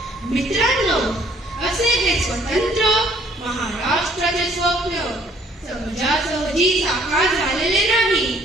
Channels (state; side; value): normal; both; correlation 0.60